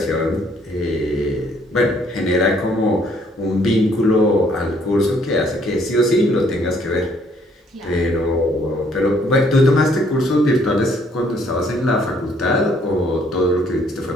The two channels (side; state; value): both; normal; correlation 0.65